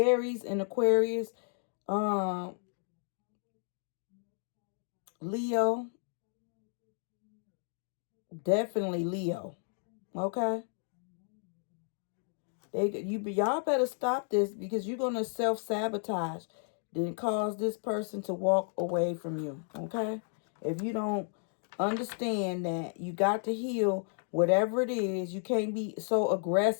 and Aquarius, Leo, definitely Leo. Okay? Y'all better stop this because you're going to self-sabotage, then cause this person to walk away from you. Okay? If you don't understand that you got to heal whatever it is, you can't be so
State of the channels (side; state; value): right; silent; 56 dB below the other